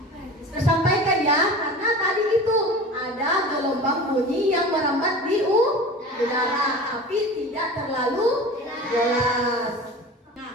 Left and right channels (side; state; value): both; normal; correlation 0.36